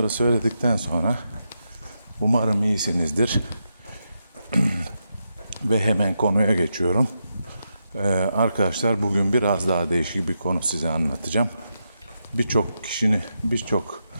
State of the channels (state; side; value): inverted; both; correlation -0.85